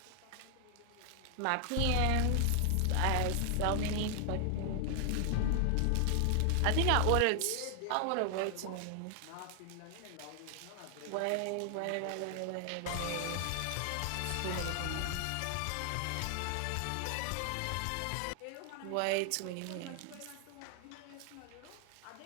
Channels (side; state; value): both; different; correlation 0.00